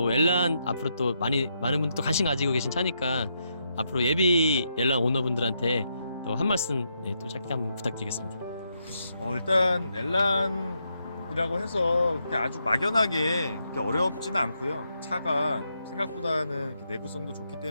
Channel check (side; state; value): both; inverted; correlation -0.80